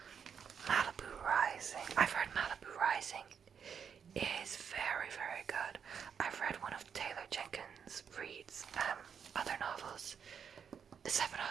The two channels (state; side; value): quieter; left; 7.2 dB